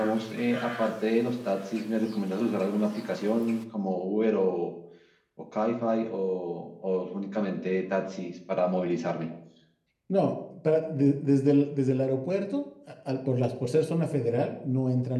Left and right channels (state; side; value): identical; both; correlation 1.00